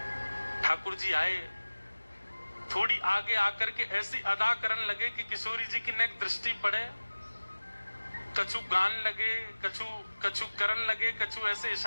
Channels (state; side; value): inverted; both; correlation -1.00